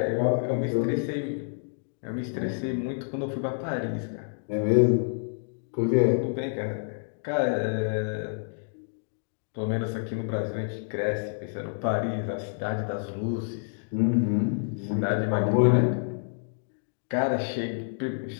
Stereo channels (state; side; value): silent; right; digital silence